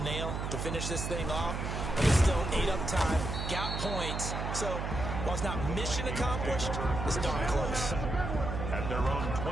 to finish this thing off, but it's still 8 up time, got points. So while it's not mission accomplished, it's darn close. At their own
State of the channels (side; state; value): right; noise; hum, 3 dB below the sound